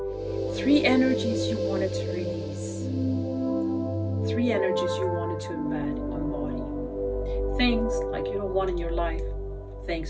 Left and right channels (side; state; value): both; identical; correlation 1.00